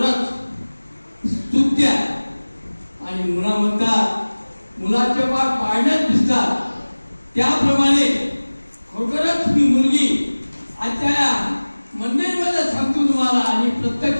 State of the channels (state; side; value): inverted; both; correlation -1.00